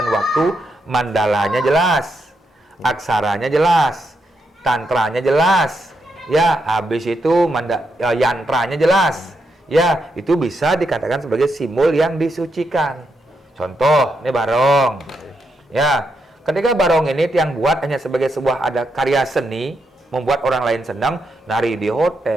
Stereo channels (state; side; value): normal; both; correlation 0.82